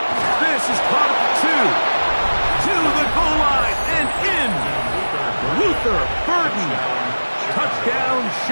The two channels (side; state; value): both; inverted; correlation -1.00